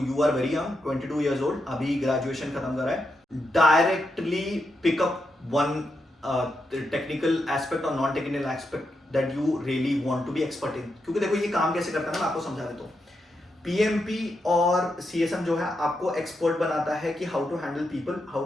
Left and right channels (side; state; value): both; normal; correlation 0.84